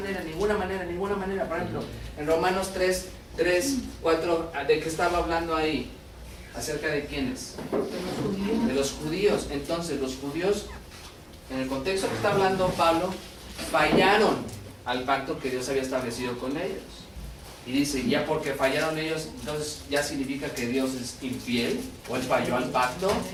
por ejemplo, en Romanos 3:4, ¿de qué estaba hablando ahí? ¿Acerca de quiénes? De los judíos. Entonces, los judíos, en el contexto que está hablando Pablo, fallaron al pacto que Dios había establecido con ellos. Y dice, ya porque fallaron ellos, entonces ya significa que Dios es infiel, o él falló al pacto.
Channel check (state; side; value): identical; both; correlation 1.00